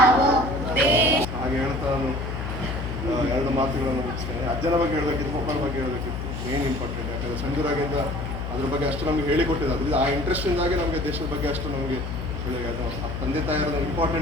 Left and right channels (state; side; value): noise; left; hum, 5 dB below the sound